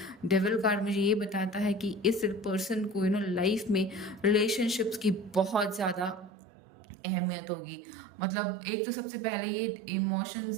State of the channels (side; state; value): left; drops out; at 6.3 s